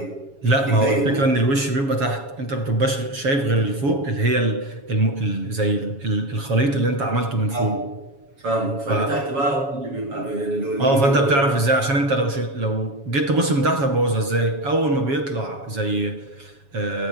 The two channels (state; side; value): late; left; 7.2 ms